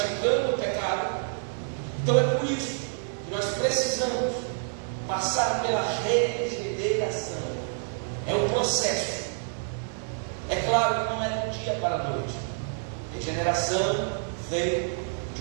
o pecado? Então é por isso que nós precisamos passar pela regeneração. É um processo. É claro que não é do dia para a noite. Regeneração vem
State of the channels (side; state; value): left; silent; digital silence